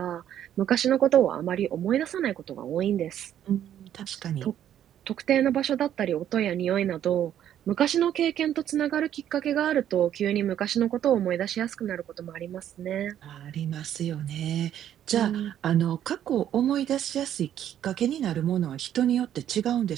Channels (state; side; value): quieter; left; 10.6 dB